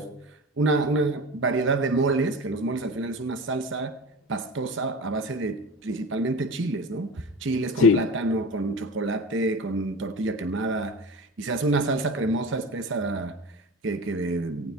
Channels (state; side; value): normal; both; correlation 0.31